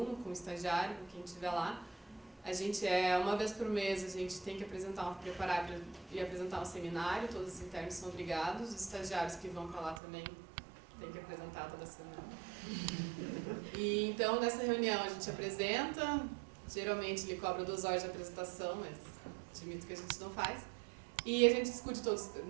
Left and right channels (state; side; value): drops out; left; at 10.0 s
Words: com o estagiário, com quem estiver lá. A gente uma vez por mês, a gente tem que preparar e apresentar um seminário, todos os internos são obrigados, os estagiários que vão para lá também têm que apresentar toda semana. E então, nessa reunião a gente apresenta, geralmente ele cobra 2 horas de apresentação, mas admito que a gente não faz. E a gente discute